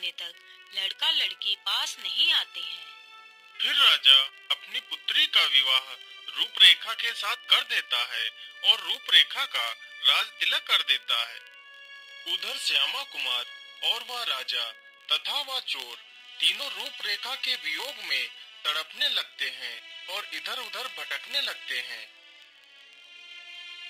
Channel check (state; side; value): identical; both; correlation 1.00